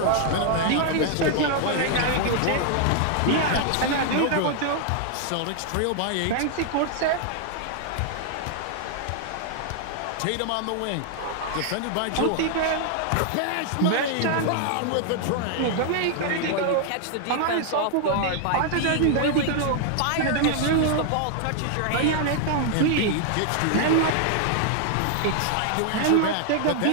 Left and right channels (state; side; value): different; both; correlation 0.00